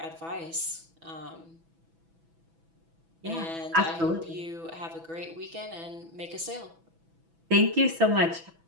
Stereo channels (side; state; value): left; late; 6.1 ms